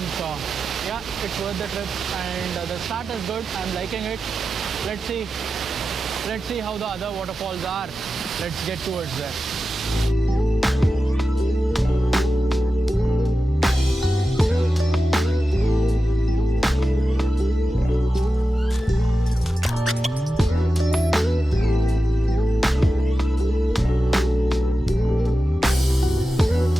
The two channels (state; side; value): normal; both; correlation 0.92